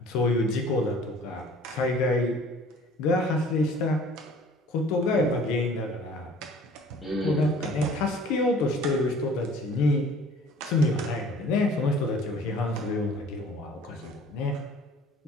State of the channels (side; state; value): both; normal; correlation 0.50